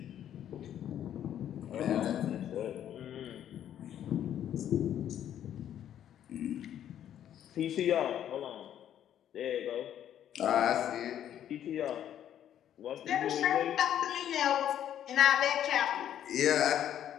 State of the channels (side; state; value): right; quieter; 10.5 dB